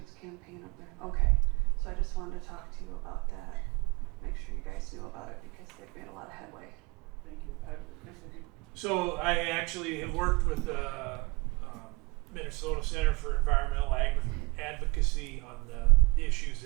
campaign up there. Okay, so I just wanted to talk to you about that. Make sure you guys knew about it because they've made a lot of headway. Thank you. Chris, have you? So I actually have worked with the Minnesota Center for Environmental Advocacy on the issues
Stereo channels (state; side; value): quieter; left; 25.7 dB